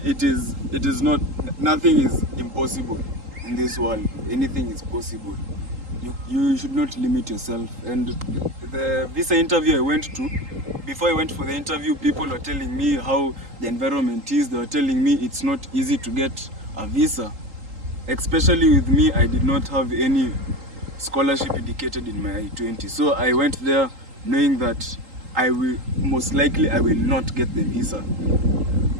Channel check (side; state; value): left; late; 3.8 ms